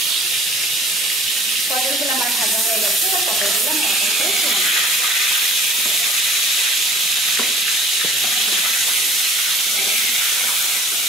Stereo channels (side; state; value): both; normal; correlation 0.50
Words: পটলগুলো আমার ভাজা হয়ে গেছে। এবার পটলগুলো আমি এক এক করে